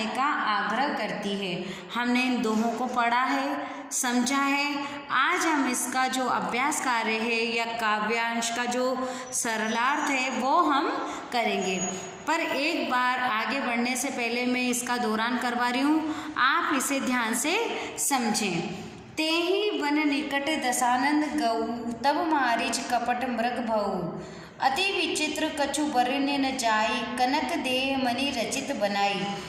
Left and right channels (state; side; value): identical; both; correlation 1.00